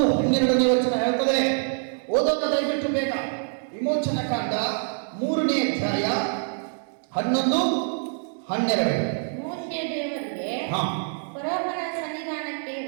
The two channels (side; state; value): left; silent; 62 dB below the other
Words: ವಚನ ಹೇಳ್ತದೆ. ಓದೋಣ ದಯವಿಟ್ಟು ಬೇಗ. ವಿಮೋಚನ ಕಾಂಡ 3ನೇ ಅಧ್ಯಾಯ 11-12. ಮೋಶೆ ದೇವರಿಗೆ ಫರೋಹನ ಸನ್ನಿಧಾನಕ್ಕೆ